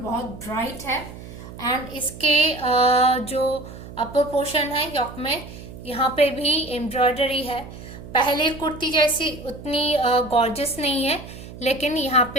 ब्राइट है। एंड इसके जो अपर पोर्शन है योक में, यहाँ पे भी एम्ब्रॉयडरी है। पहले कुर्ती जैसी उतनी गॉर्जियस नहीं है, लेकिन यहाँ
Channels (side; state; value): right; noise; hum, 14 dB below the sound